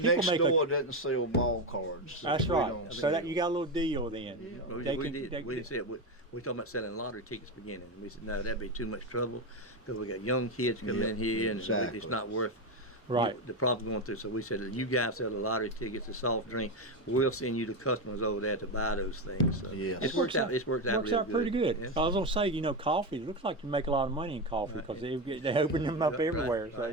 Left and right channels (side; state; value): both; normal; correlation 0.13